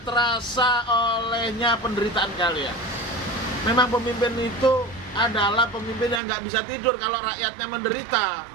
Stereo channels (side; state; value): left; drops out; at 6.2 s